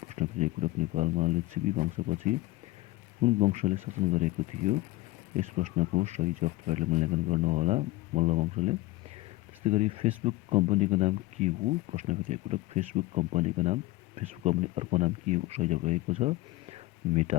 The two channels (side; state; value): right; quieter; 19.0 dB